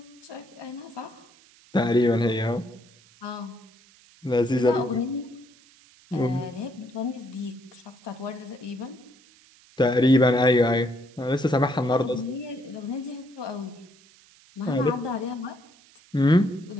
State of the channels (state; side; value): noise; right; hiss, 27 dB below the sound